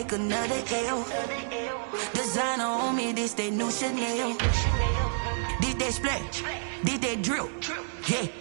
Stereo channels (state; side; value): silent; left; digital silence